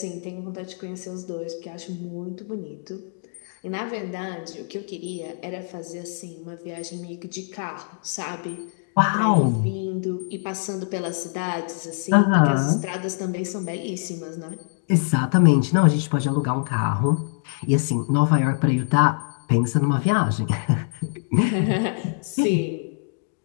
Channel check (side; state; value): right; silent; digital silence